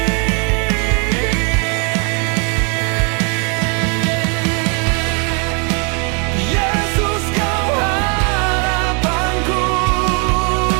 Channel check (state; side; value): quieter; left; 35.6 dB